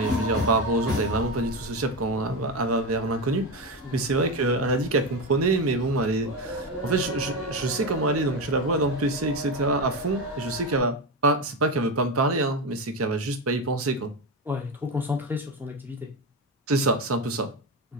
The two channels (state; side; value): normal; both; correlation 0.15